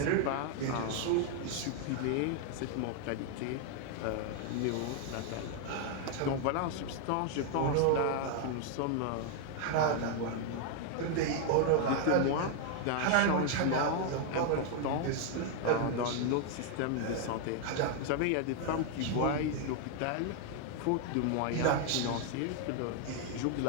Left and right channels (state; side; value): different; both; correlation 0.00